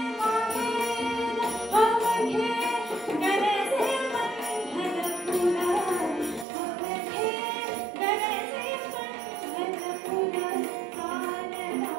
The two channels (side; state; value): left; drops out; at 6.5 s